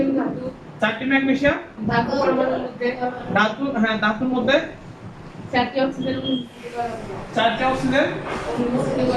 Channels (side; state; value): both; identical; correlation 1.00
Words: ম্যাগনেসিয়াম ধাতু পরমাণুর মধ্যে ধাতু, হ্যাঁ ধাতুর মধ্যে 4টি অক্সিজেন মিশ্রিত করা হলো। 4টি অক্সিজেন মিশ্রিত